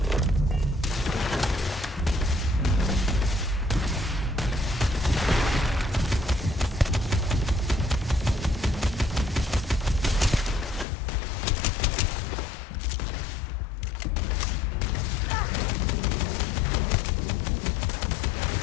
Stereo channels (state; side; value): drops out; right; at 10.9 s